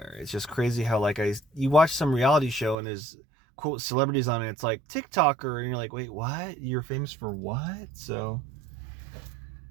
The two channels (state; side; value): drops out; left; at 2.8 s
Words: It's just crazy how like you watch some reality show and there's quote celebrities on it. It's like TikToker, and you're like, wait, what? You're famous for what? So.